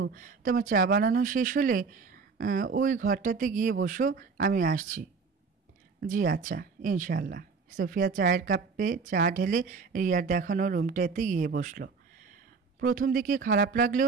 তোমার চা বানানো শেষ হলে ওই ঘরটাতে গিয়ে বসো, আমি আসছি। জি আচ্ছা, ইনশাআল্লাহ। সোফিয়া চায়ের কাপে চা ঢেলে রিয়ার দেখানো রুমটাতে গিয়ে বসলো। প্রথম দিকে খারাপ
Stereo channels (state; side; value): quieter; left; 5.0 dB